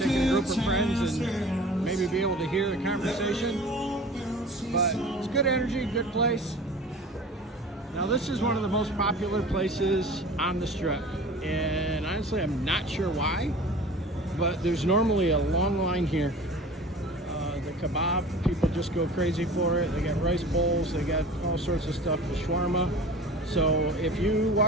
a group of friends and maybe be able to hear the conversation. But it's good energy, good place. Now this is one of the most popular places on the Strip. And honestly, I'm not sure why, but there's normally a long line here. The kebab, people just go crazy for it. They got rice bowls, they got all sorts of stuff, the shawarma. So if you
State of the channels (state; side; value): normal; both; correlation 0.40